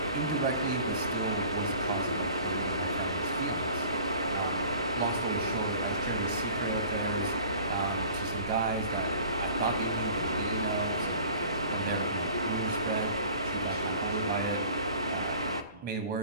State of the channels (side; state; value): both; inverted; correlation -0.47